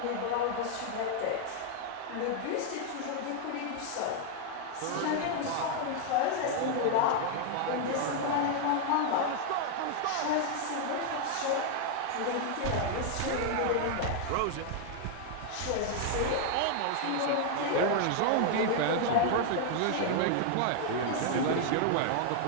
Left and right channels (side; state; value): both; different; correlation 0.00